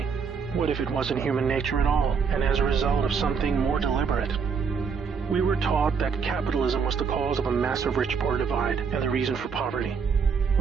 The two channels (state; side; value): quieter; left; 5.9 dB